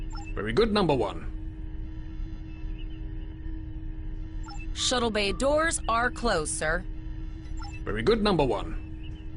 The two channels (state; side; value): identical; both; correlation 1.00